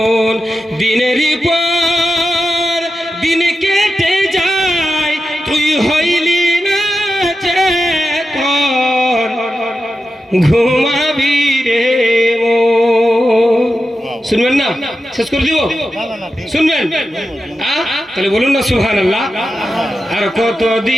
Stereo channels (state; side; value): normal; both; correlation 0.91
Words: দিনের পর দিন কেটে যায় তুই হইলি না চেতন, ঘুমাবি রে মন। শুনবেন না? শেষ করে দিব? শুনবেন? তাহলে বলুন না সুবহানাল্লাহ। আর